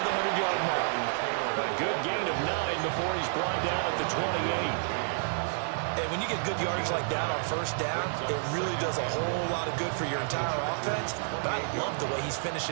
the 100-yard mark. A good gain of 9 before he's brought down at the 28. And when you get good yardage like that on 1st down, it really does a whole lot of good for your entire offense. But I love the way he's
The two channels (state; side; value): silent; left; digital silence